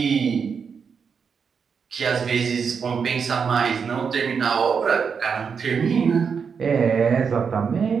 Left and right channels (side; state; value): left; quieter; 6.2 dB